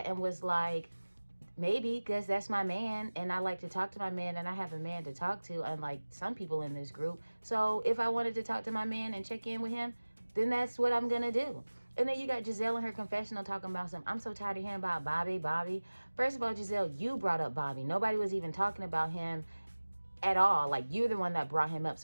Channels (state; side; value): inverted; both; correlation -1.00